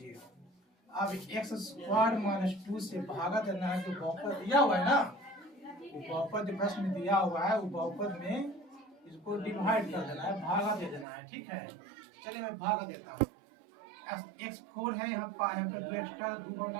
अब x स्क्वायर -2 से भागा देना है जो बहुपद दिया हुआ है ना वो बहुपद जो प्रश्न में दिया हुआ है वो बहुपद में इसको डिवाइड कर देना है, भागा दे देना है, ठीक है। चलिए मैं भागा देता हूँ। x4 है, यहाँ पे 2 एक्स्ट्रा 2 पावर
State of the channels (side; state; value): left; drops out; at 11.1 s